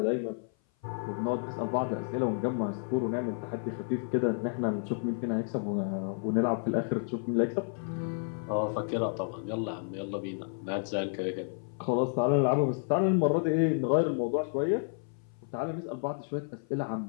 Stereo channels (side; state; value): right; silent; 56 dB below the other